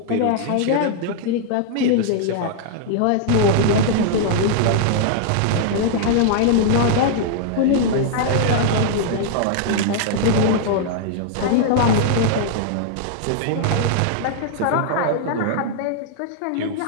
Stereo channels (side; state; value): both; different; correlation -0.01